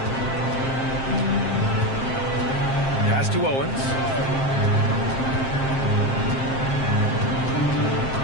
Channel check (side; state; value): right; late; 7.5 ms